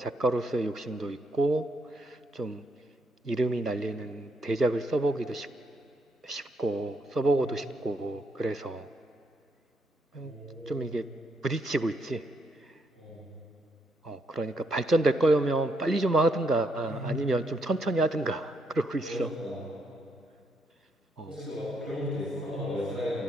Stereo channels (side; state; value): both; normal; correlation 0.76